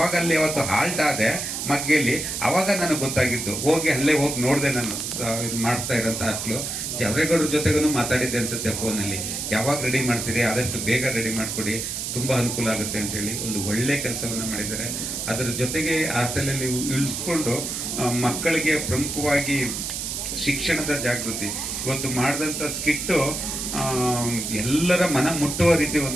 ಅಲ್ಲಿ ಅವತ್ತು ಹಾಲ್ಟ್ ಆದೆ ಮಗ್ಗೆಯಲ್ಲಿ, ಆವಾಗ ನನಗೆ ಗೊತ್ತಾಗಿದ್ದು. ಅಲ್ಲೇ ಹೋಗಿ ನೋಡಿದೆ. ನಾನು ಮಾಡ್ತಾ ಇರೋಂಥ ಹಾಸ್ಟೆಲು ಜವರೇಗೌಡ್ರ ಜೊತೆಗೂ ಮಾತಾಡಿದ್ದೆ ಅನ್ಸುತ್ತೆ ಫೋನಲ್ಲಿ. ಯಾವಾಗ ರೆಡಿ ಮಾಡ್ತೀರಿ, ಆದಷ್ಟು ಬೇಗ ರೆಡಿ ಮಾಡಿಕೊಡಿ, ತುಂಬ ಅನುಕೂಲ ಆಗುತ್ತೆ ಅಂತೇಳಿ ಒಂದು ಒಳ್ಳೆ ಕೆಲಸವನ್ನು ಮಾಡಿದ್ದಾರೆ. ಅದರ ಜೊತೆಗೆ ಹಾಸ್ಟೆಲಲ್ಲಿ ಇಳಿಸ್ಕೊಂಡು ಮಕ್ಕಳಿಗೆ ಪ್ರಮುಖವಾಗಿ ಶಿಕ್ಷಣದ ಜಾಗೃತಿ ಇವತ್ತು ಮಾಡಿದಂಥ ಸ್ಕಿಟ್ಟು ಎಲ್ಲರ ಮನ ಮುಟ್ಟುವ ರೀತಿ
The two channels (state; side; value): noise; right; hiss, 4 dB below the sound